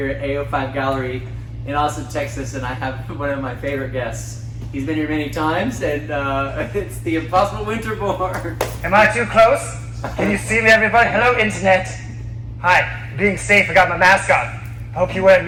at A05 Gallery in Austin, Texas, and I have one of my favorite guests. He's been here many times, and it's the impossible Winterbourne. Am I too close? Can you see me, everybody? Hello, internet. Hi, being safe, I got my mask on. I hope you're wearing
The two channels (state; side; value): identical; both; correlation 1.00